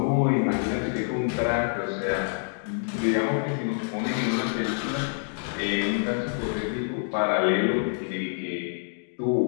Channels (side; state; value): right; silent; digital silence